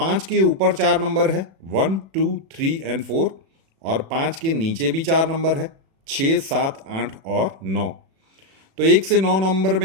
के ऊपर 4 नंबर है, 1, 2, 3 और 4, और 5 के नीचे भी 4 नंबर है, 6, 7, 8 और 9। तो 1 से 9 नंबर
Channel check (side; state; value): left; late; 36 ms